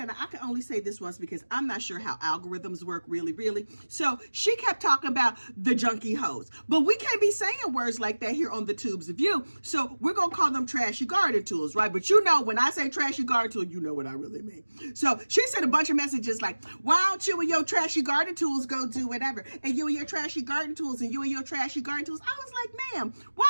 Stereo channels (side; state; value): both; inverted; correlation -1.00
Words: I can only say this once because I'm not sure how algorithms work really. So she kept talking about the junkie hoes. But we can't be saying words like that here on the Tubes of You. So we're going to call them trashy garden tools, right? But you know, when I say trashy garden tool, you know what I really mean. So she sent a bunch of messages like, why don't you and your trashy garden tools go do whatever? And you and your trashy garden tools and you and your trashy garden tools. I was like, ma'am, why